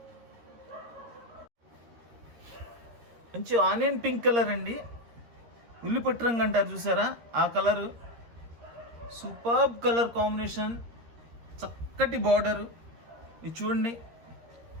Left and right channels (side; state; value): left; late; 13 ms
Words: మంచి ఆనియన్ పింక్ కలర్ అండి, ఉల్లిపట్టు రంగు అంటారు చూసారా ఆ కలరు. సూపర్బ్ కలర్ కాంబినేషన్, చక్కటి బార్డర్. ఇది చూడండి,